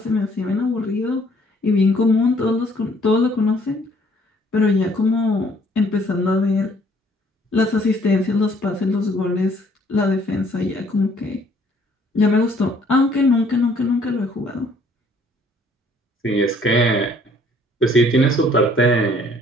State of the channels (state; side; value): normal; both; correlation 0.61